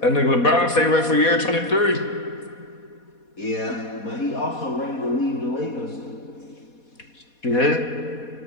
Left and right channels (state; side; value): late; right; 4.2 ms